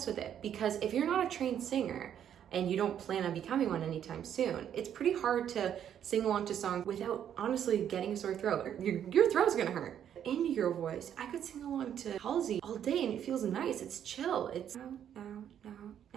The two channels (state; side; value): quieter; left; 9.6 dB